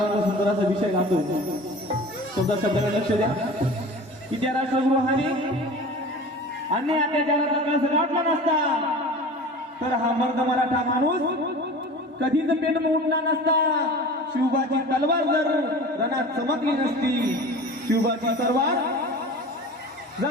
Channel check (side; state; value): both; normal; correlation 0.38